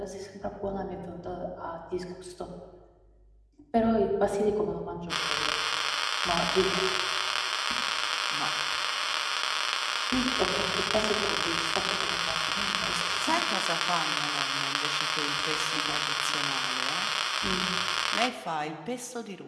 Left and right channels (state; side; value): identical; both; correlation 1.00